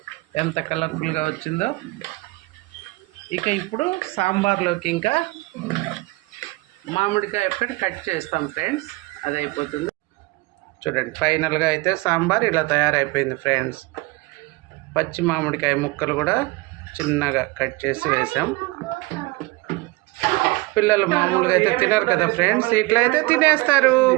ఎంత కలర్ఫుల్గా వచ్చిందో. ఇక ఇప్పుడు సాంబార్లోకి ఇంకా మామిడికాయ ఒక్కటి కట్ చేస్తాం ఫ్రెండ్స్, అది అయిపోతుంది. చూడండి ఫైనల్గా అయితే సాంబార్ ఇలా తయారైపోయింది ఫ్రెండ్స్. పచ్చి మామిడికాయ ముక్కలు కూడా చిన్నగా కట్ చేసి వేసాం. పిల్లలు మామూలుగా అయితే తినరు కదా ఫ్రెండ్స్, ఇట్లా అయితే తినేస్తారు.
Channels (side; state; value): left; quieter; 22.7 dB